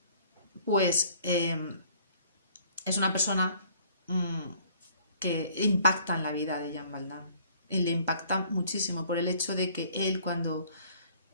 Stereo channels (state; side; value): inverted; both; correlation -0.57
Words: pues, es una persona que impacta en la vida de Jean Valjean. Y le impacta muchísimo por el hecho de que él cuando